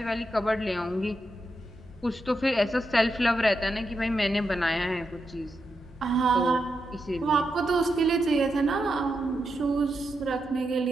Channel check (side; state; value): both; normal; correlation 0.85